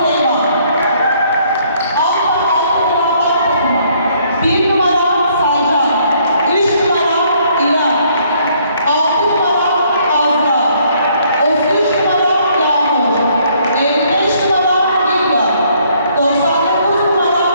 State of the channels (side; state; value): both; inverted; correlation -0.65